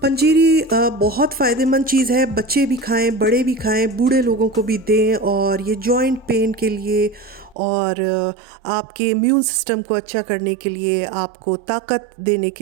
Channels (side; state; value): left; drops out; at 7.6 s